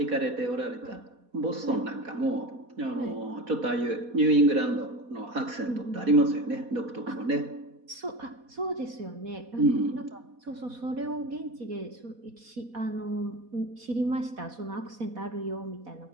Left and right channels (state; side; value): late; left; 4.1 ms